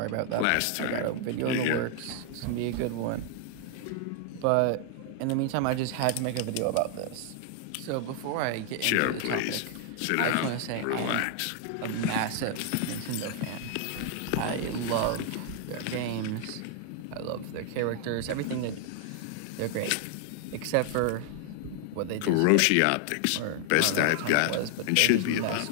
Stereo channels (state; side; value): different; both; correlation 0.00